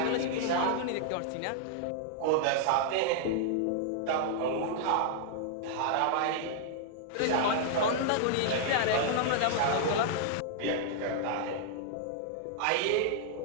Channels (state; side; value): different; both; correlation -0.01